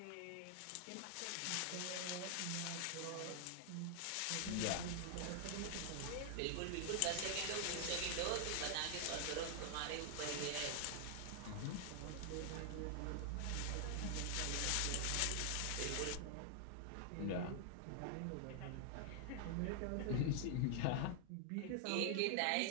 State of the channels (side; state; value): both; different; correlation 0.00